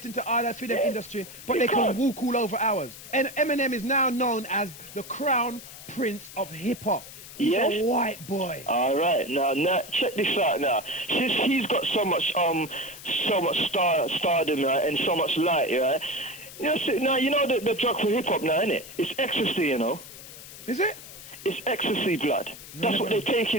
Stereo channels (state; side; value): noise; left; hiss, 15 dB below the sound